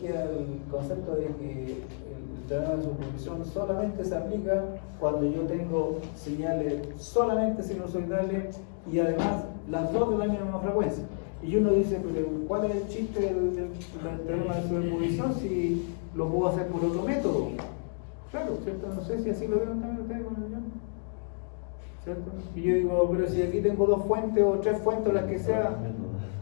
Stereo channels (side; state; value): right; silent; 58 dB below the other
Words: el concepto de que el teorema de superposición solamente se aplica cuando yo tengo señales solamente sinusoidales y además las dos de la misma frecuencia. Y uno dice, pero ¿cuál es el chiste del teorema de superposición si lo puedo hacer por otro método? Claro, ¿cierto? No sé si así lo vieron también ustedes con el guión, ¿cierto? Y yo digo, pero si aquí tengo 2 fuentes o 3 fuentes, las que sea,